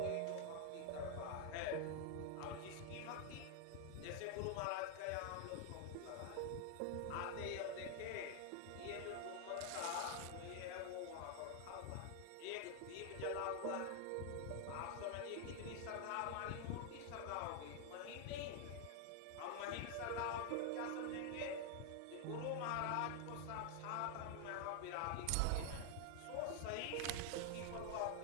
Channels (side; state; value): both; different; correlation 0.00